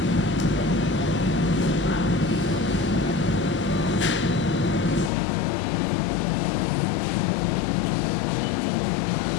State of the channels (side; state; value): right; drops out; at 5.1 s